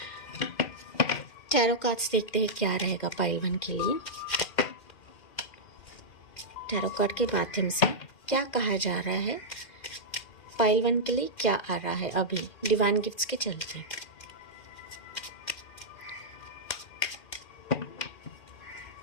टैरो कार्ड्स देखते हैं क्या रहेगा पाइल 1 के लिए। टैरो कार्ड के माध्यम से क्या कहा जा रहा है पाइल 1 के लिए, क्या आ रहा है अभी डिवाइन गिफ्ट्स के चलते।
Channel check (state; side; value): late; right; 2.4 ms